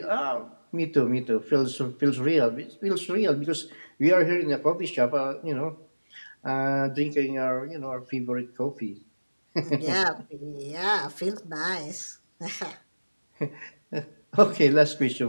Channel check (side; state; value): both; inverted; correlation -1.00